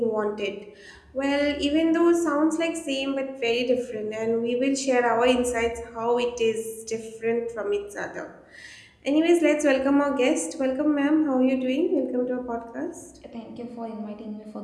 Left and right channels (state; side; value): identical; both; correlation 1.00